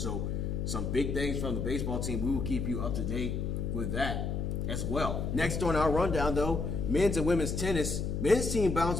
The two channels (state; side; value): noise; left; hum, 1 dB below the sound